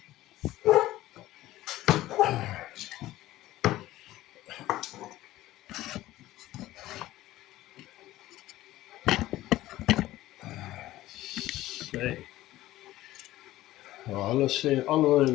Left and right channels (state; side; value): quieter; right; 15.8 dB